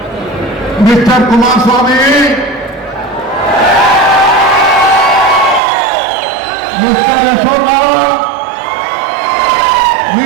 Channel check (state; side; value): drops out; left; at 5.6 s